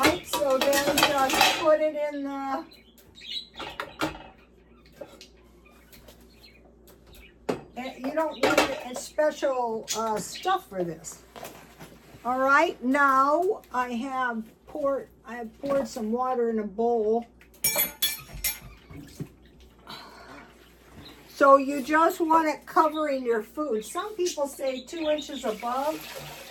so then just put it in the, you don't need a special stuff for this. All right, now I have poured some water in a bowl. So you just want it covering your food. Some people say 2 inches above.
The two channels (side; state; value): both; identical; correlation 1.00